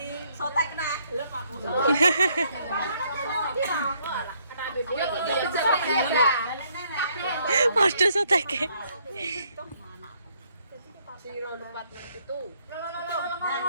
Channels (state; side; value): inverted; both; correlation -0.69